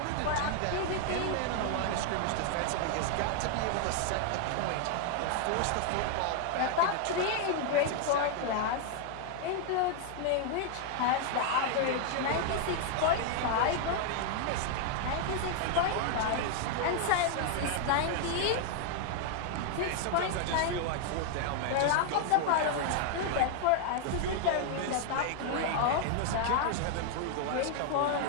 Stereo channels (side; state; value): both; different; correlation 0.00